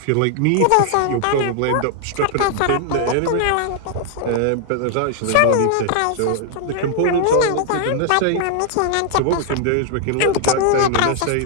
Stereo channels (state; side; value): different; both; correlation 0.00